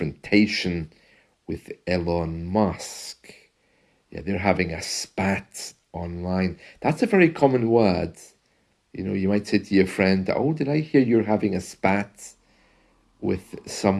with Elon Musk. Yeah, they're having a spat online. That's a very common word. You know, you might say to your friend, oh, did I hear you're having a spat with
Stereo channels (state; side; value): identical; both; correlation 1.00